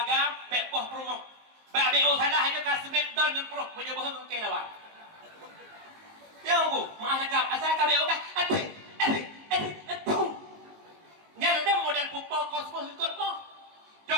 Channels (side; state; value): left; late; 19 ms